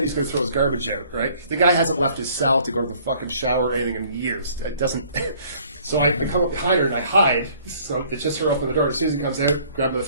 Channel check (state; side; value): inverted; both; correlation -0.58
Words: he's going to throw his garbage out, right? The guy hasn't left his cell to go to the fucking shower or anything in years. It doesn't... So I come up behind her and I hide. So it's just her open the door. As soon as he comes out, grab the